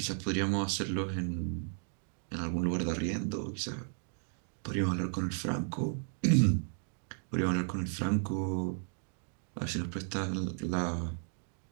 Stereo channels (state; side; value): silent; left; 55 dB below the other